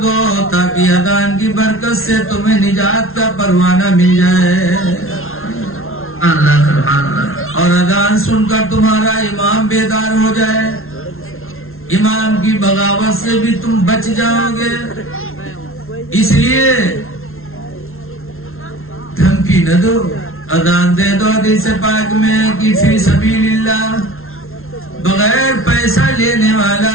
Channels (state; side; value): late; right; 0.62 ms